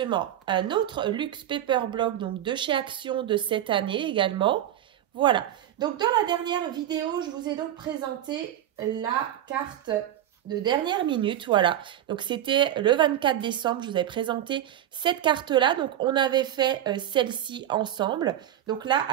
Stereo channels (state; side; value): quieter; left; 11.5 dB